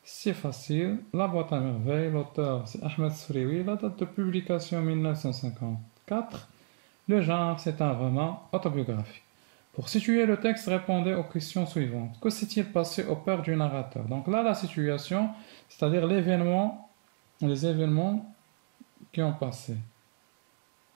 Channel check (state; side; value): silent; left; digital silence